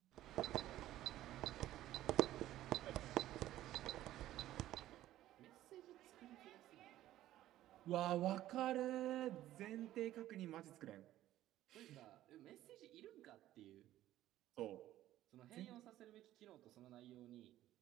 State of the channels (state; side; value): quieter; left; 14.0 dB